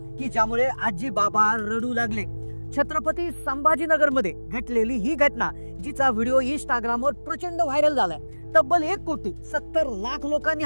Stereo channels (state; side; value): inverted; both; correlation -1.00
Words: की ज्यामुळे आजी बाबा रडू लागले। छत्रपती संभाजीनगर मध्ये घडलेली ही घटना जिचा व्हिडिओ इंस्टाग्रामवर प्रचंड व्हायरल झालाय। तब्बल 1,70,00,000 लोकांनी